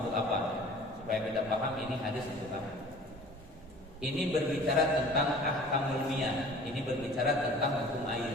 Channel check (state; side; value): normal; both; correlation 0.46